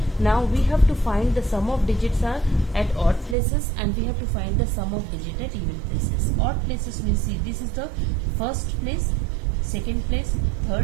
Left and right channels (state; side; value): drops out; left; at 3.4 s